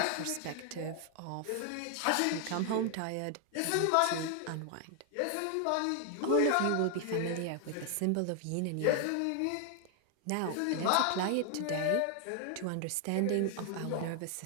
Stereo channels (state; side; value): different; both; correlation 0.00